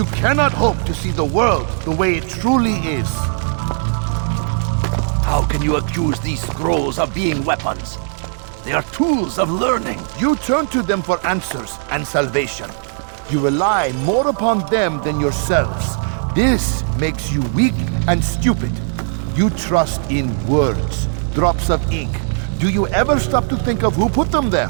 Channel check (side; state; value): left; silent; 67 dB below the other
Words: cannot hope to see the world the way it truly is. How can you accuse these scrolls of being weapons? They are tools of learning. You turn to them for answers and salvation. You rely more upon them than yourselves. This makes you weak and stupid. You trust in words, drops of ink. Do you ever stop to think of who put them there?